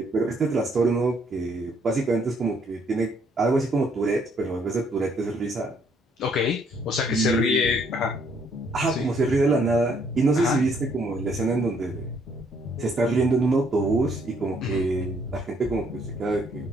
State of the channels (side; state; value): both; normal; correlation 0.67